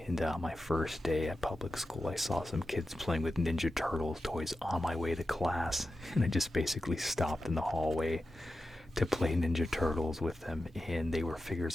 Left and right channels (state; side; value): normal; both; correlation 0.91